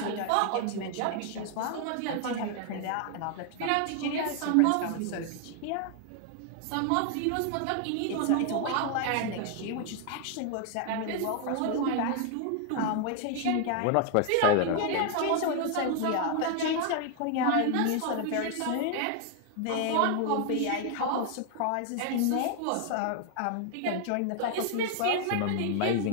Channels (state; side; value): different; both; correlation 0.00